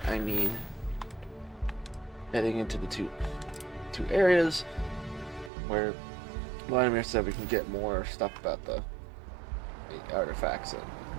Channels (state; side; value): drops out; left; at 5.5 s